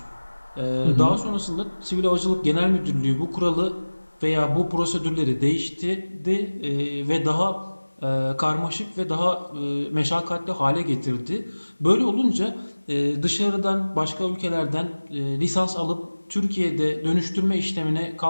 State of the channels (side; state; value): both; inverted; correlation -1.00